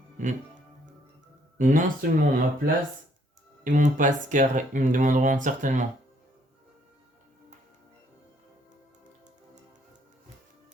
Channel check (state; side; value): normal; both; correlation 0.66